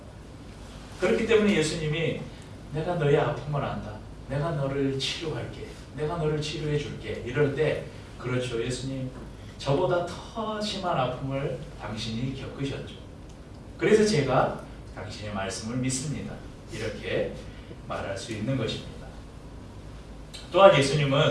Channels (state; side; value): identical; both; correlation 1.00